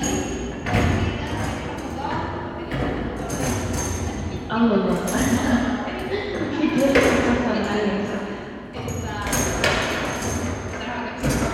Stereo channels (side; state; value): both; identical; correlation 1.00